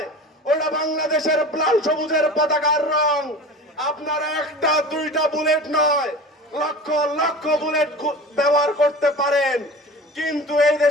ওটা বাংলাদেশের লাল সবুজের পতাকার রং। আপনারা একটা দুইটা বুলেট নয়, লক্ষ লক্ষ বুলেট ব্যবহার করতে পারেন, কিন্তু এই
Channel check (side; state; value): both; normal; correlation 0.36